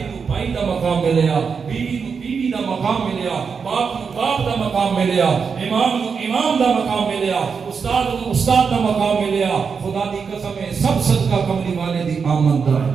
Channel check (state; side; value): quieter; left; 5.8 dB